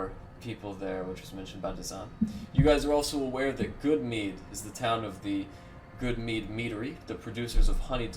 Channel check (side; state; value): both; identical; correlation 1.00